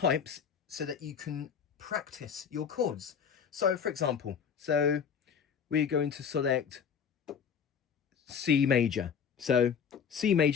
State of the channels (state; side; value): quieter; right; 7.1 dB